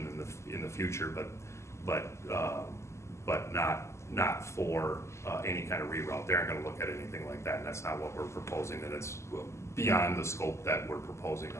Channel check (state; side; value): late; right; 0.13 ms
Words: in the future, but not for any kind of reroute. They aren't gonna look at anything like that, and that's not what we're proposing, and it's beyond the scope that we're proposing